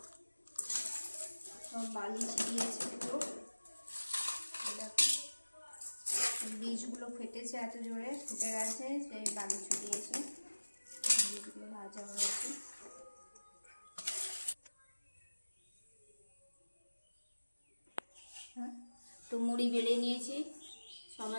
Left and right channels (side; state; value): both; inverted; correlation -1.00